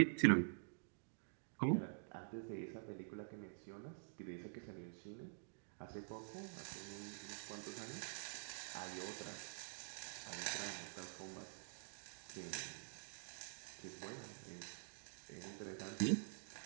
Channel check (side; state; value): left; silent; digital silence